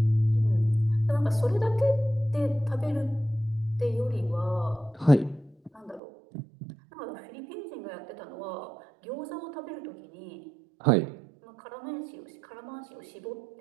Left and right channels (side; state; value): left; drops out; at 6.0 s